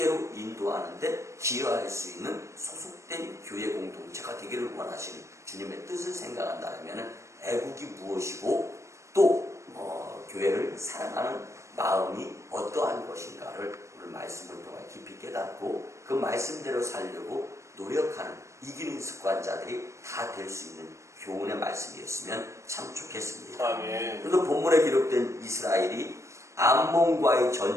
인도하는데 기여할 수 있는 소속된 교회 공동체가 되기를 원하시는 주님의 뜻을 생각한다면 애국이 무엇이고 또 교회를 사랑하는 마음이 어떠한 것인가를 오늘 말씀을 통해 깊이 깨닫고 그 말씀대로 살려고 노력하는 이기는 습관자들이 다 될 수 있는 교훈의 말씀이었으면 참 좋겠습니다. 아멘. 그래서 본문에 기록된 이스라엘이 암몬과의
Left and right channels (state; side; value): late; left; 0.14 ms